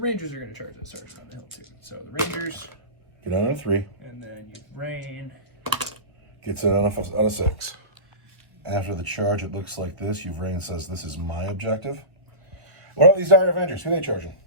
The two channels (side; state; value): left; late; 1.1 ms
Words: are gonna charge that sergeant on the hill too. So the Rangers, Get on a 3. and then your brain. Gets it on a 6. After the charge, it looks like this. Uvrain says, this is my objective. What are these Dire Avengers? Who are they charging?